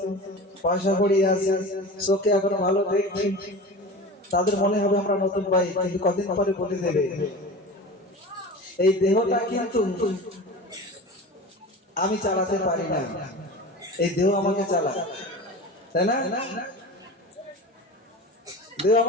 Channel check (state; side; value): normal; both; correlation 0.33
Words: পয়সা কড়ি আছে, চোখে এখন ভালো দেখছি, তাদের মনে হবে আমরা নতুন ভাই, কিন্তু কদিন পরে বলে দেবে এই দেহটা কিন্তু আমি চালাতে পারি না, এই দেহ আমাকে চালায়, তাই না? দেহ